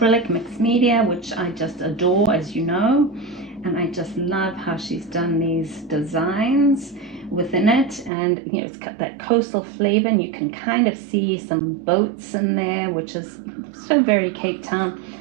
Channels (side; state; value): left; drops out; at 8.1 s